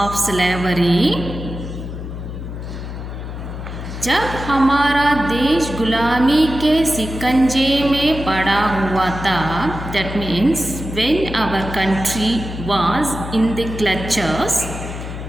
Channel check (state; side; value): noise; left; hum, 8 dB below the sound